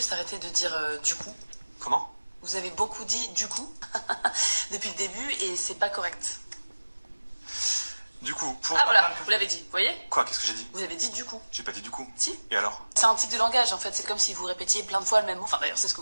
arrêter de dire du coup? Comment? Vous avez beaucoup dit du coup depuis le début et c'est pas correct. Du coup, pour... Ah voilà, vous l'avez dit, vous voyez? Quoi? Qu'est-ce que j'ai dit? Vous avez dit du coup. J'ai pas dit du coup. Si. Et alors? C'est un tic de langage en fait, c'est comme si vous répétiez plein de fois le même mot. Enfin d'ailleurs, c'est ce que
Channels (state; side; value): inverted; both; correlation -1.00